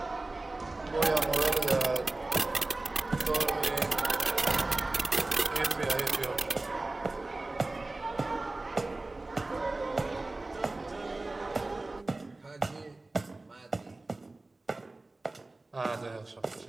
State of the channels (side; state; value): left; quieter; 3.1 dB